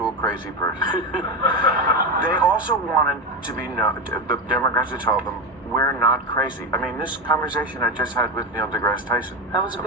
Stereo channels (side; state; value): both; normal; correlation 0.15